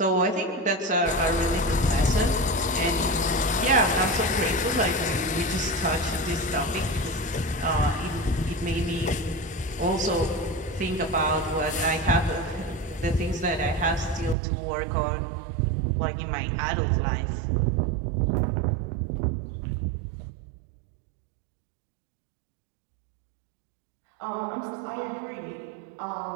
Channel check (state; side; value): drops out; left; at 14.4 s